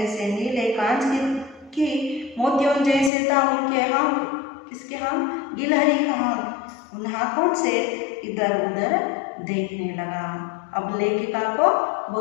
नीले कांच की मोतियों जैसे था उनके हाथ। किसके हाथ? गिलहरी का हाथ। उन हाथों से इधर उधर देखने लगा। अब लेखिका को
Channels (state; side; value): drops out; right; at 3.1 s